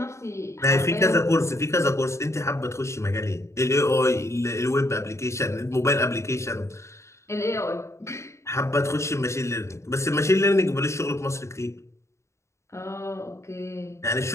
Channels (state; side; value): late; right; 0.14 ms